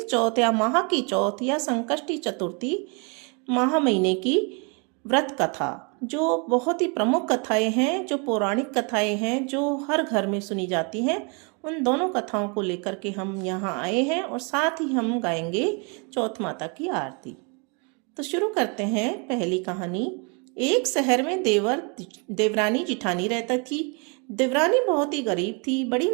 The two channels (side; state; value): left; quieter; 33.8 dB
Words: चौथ या माह की चौथ या संकष्टी चतुर्थी माह महीने की व्रत कथा, जो बहुत ही प्रमुख कथाएं हैं, जो पौराणिक कथाएं हैं, जो हर घर में सुनी जाती हैं। उन दोनों कथाओं को लेकर के हम यहाँ आए हैं और साथ ही हम गाएंगे चौथ माता की आरती। तो शुरू करते हैं पहली कहानी। एक शहर में देवरानी जिठानी रहता थी। देवरानी बहुत ही गरीब थी, बड़ी